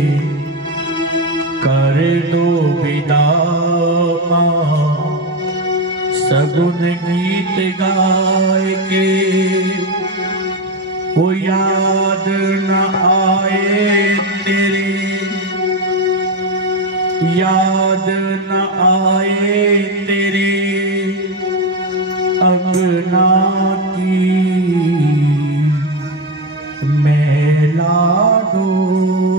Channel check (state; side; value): normal; both; correlation 0.13